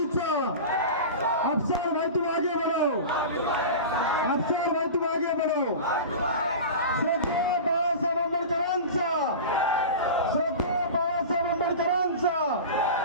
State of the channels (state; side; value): inverted; both; correlation -0.30